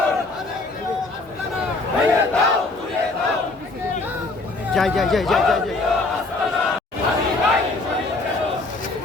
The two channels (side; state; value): right; quieter; 3.3 dB